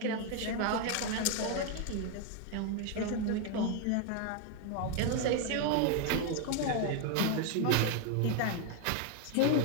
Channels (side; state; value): both; different; correlation 0.01